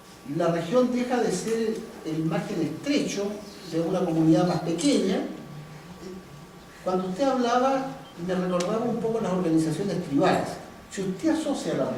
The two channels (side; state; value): both; identical; correlation 1.00